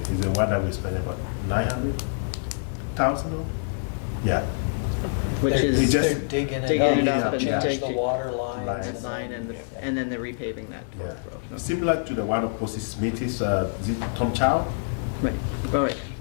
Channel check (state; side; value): silent; right; digital silence